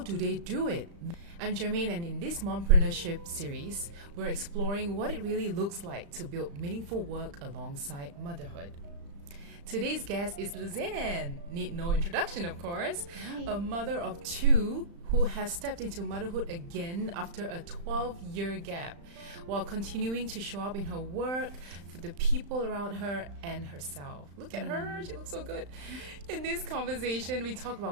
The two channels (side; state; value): left; late; 35 ms